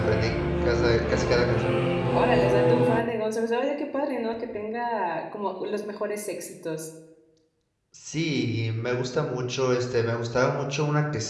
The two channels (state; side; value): identical; both; correlation 1.00